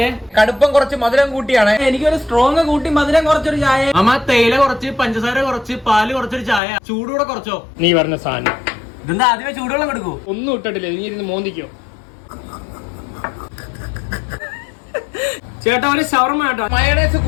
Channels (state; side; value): drops out; right; at 6.6 s